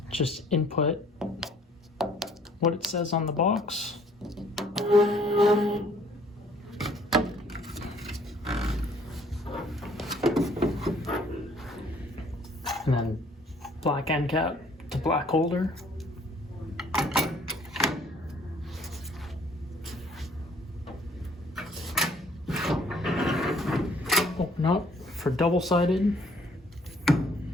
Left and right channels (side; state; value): both; normal; correlation 0.60